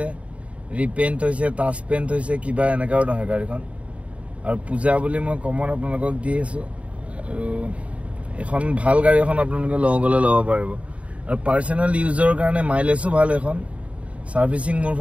ৰিপেইণ্ট হৈছে, টাচ পেইণ্ট হৈছে, কিবা এনেকুৱাও নহয় গাড়ীখন। আৰু পূজা বুলি মই কমত আপোনালোকক দি আছোঁ। আৰু এখন ভাল গাড়ী এখন আপোনালোকে লওঁ গ'লে ল'ব পাৰিব। আৰু পাৰ্চনেল ইউজৰ কাৰণে মাইলেজো ভাল এখন। ছাৰ্ভিচিং মোৰ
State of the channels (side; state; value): left; late; 0.064 ms